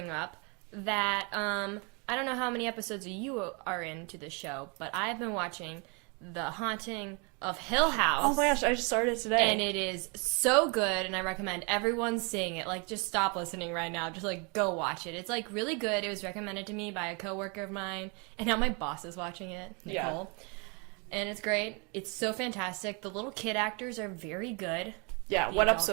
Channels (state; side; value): quieter; left; 32.3 dB